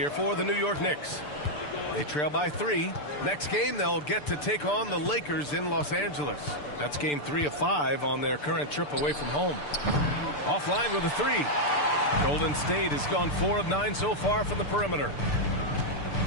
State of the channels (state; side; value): late; right; 6.8 ms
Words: for the New York Knicks. They trail by 3. Next game, they'll get to take on the Lakers in Los Angeles. That's game 3 of 5 on their current trip away from home. Offline with a 3. Golden State has gone 4 of 9 so far from the perimeter.